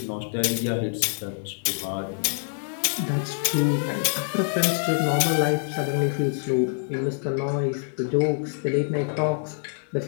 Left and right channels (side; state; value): right; silent; digital silence